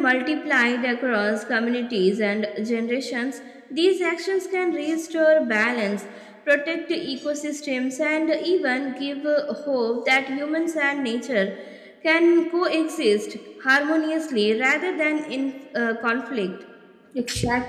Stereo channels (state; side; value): identical; both; correlation 1.00